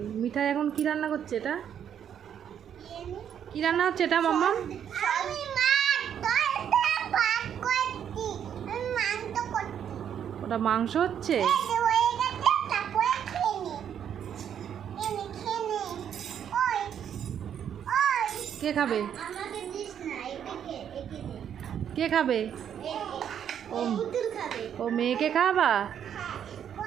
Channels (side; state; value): left; quieter; 9.0 dB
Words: মিঠাই এখন কি রান্না করছে? এটা কি রান্না হচ্ছে এটা মাম্মাম? ওটা মাংস হচ্ছে। কে খাবে? কে খাবে? ও মেয়েকে খাওয়াবা?